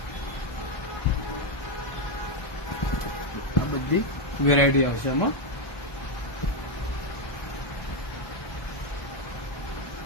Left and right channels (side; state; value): right; late; 1.2 ms